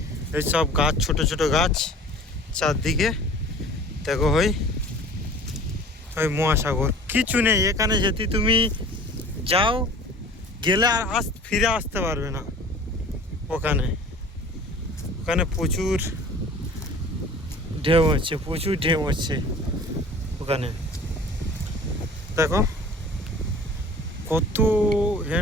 এই সব গাছ, ছোট ছোট গাছ চারদিকে। দেখো ওই ওই মহাসাগর, কিছু নেই এখানে। যদি তুমি যাও, গেলে আর ফিরে আসতে পারবে না। ওখানে ওখানে প্রচুর ঢেউ হচ্ছে, প্রচুর ঢেউ হচ্ছে ওখানে। দেখো কত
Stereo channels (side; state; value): both; normal; correlation 0.44